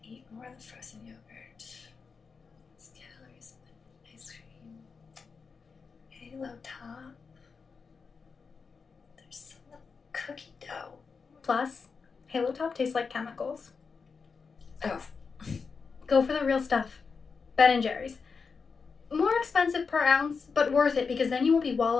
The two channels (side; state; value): right; quieter; 5.2 dB